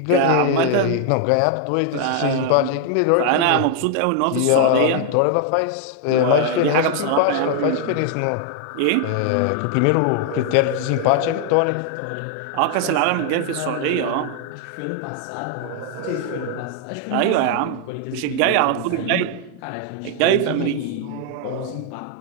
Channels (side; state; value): both; different; correlation 0.00